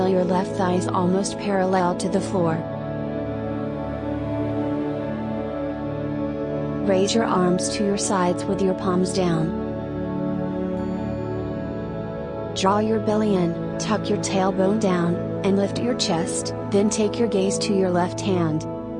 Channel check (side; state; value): both; identical; correlation 1.00